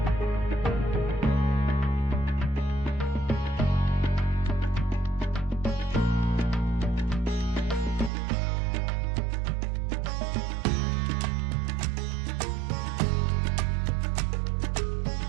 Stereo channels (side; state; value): left; drops out; at 8.1 s